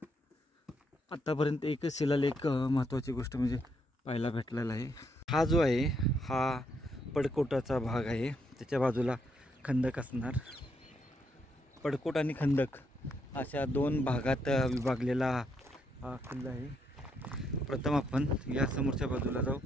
आतापर्यंत एकच शिलालेख महत्त्वाची गोष्ट म्हणजे पाहायला भेटलेला आहे. हा जो आहे हा पडकोटाचा भाग आहे. त्याच्या बाजूला खंदक असणार. पडकोट आणि खंदक अशा 2 भागात विभागलेला हा किल्ला आहे. प्रथम आपण या समोरच्या बाजूला जाऊ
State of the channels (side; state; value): both; normal; correlation 0.76